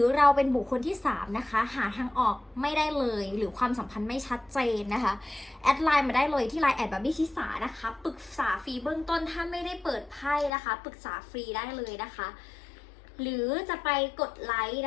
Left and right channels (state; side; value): drops out; right; at 10.5 s